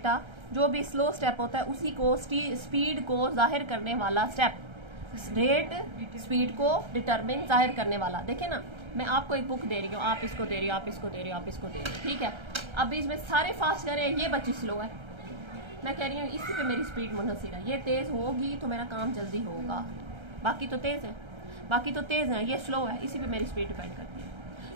जो भी स्लो स्टेप होता है उसी को स्पीड को जाहिर करने वाला स्टेप, रेट स्पीड को डिटरमिन जाहिर करने वाला। देखे ना, मैं आपको एक बुक दे रही हूँ, आप इसको दे रही हो, आप इसको दे रही हो, आप इसको दे रही हो, ठीक है। अब इसमें सारे फास्ट कर रहे हैं, ये बच्ची स्लो है। मैं कह रही हूँ इसी पे मेरी स्पीड मुनहसिर है, ये तेज होगी तो मेरा काम जल्दी होगा। बाकी तो तेज है, बाकी तो तेज है, ये स्लो है, इसी पे मेरी स्पीड डिपेंड करती है।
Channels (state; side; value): late; left; 1.3 ms